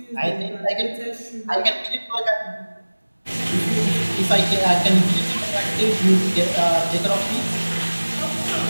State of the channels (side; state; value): both; inverted; correlation -1.00